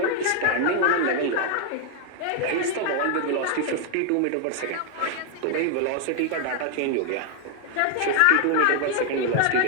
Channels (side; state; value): both; different; correlation 0.00